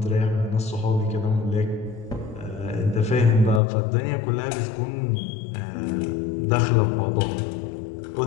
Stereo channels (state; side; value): drops out; right; at 3.6 s